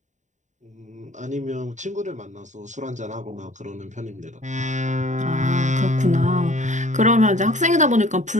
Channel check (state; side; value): late; left; 0.35 ms